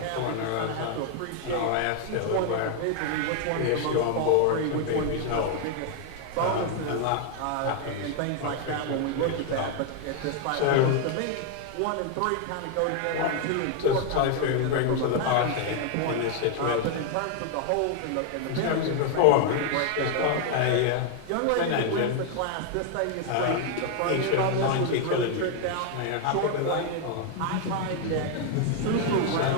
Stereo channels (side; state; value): both; different; correlation 0.00